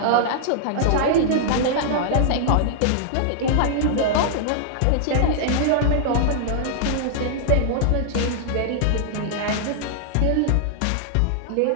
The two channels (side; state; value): both; different; correlation -0.01